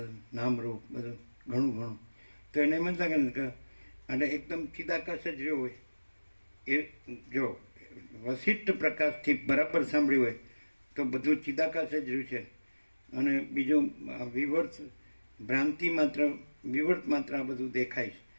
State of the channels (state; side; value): inverted; both; correlation -1.00